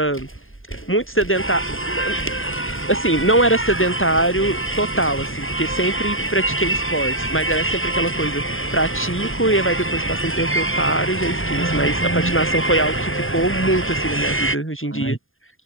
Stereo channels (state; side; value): late; right; 0.59 ms